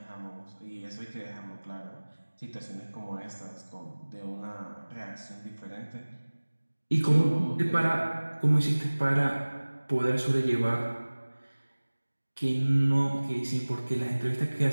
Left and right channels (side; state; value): both; inverted; correlation -1.00